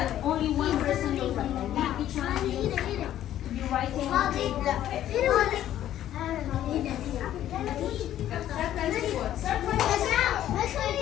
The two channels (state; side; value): quieter; right; 12.0 dB